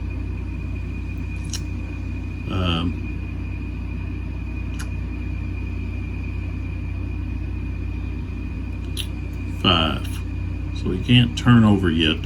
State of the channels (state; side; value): identical; both; correlation 1.00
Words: 5. So he can't turn over yet.